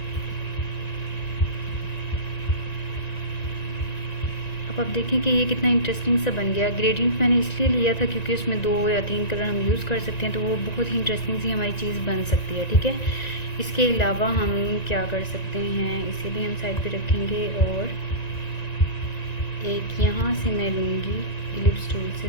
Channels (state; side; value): late; right; 1.9 ms